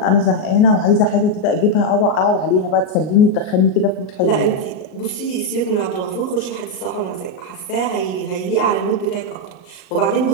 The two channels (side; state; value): right; late; 38 ms